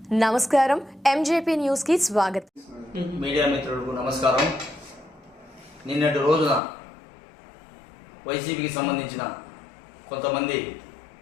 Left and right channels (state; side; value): drops out; right; at 6.6 s